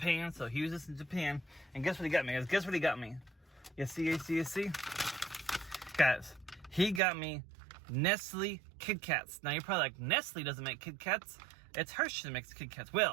So he was just in Japan, and guess what he got me, guys? Guess what he got me? You see? Guys, he got me Nestle Kit Kats. Now you're probably like, Nestle doesn't make Kit Kats. It's Hershey that makes Kit Kats.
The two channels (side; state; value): left; drops out; at 7.0 s